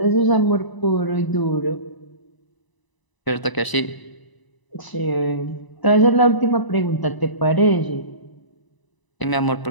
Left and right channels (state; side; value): late; right; 1.0 ms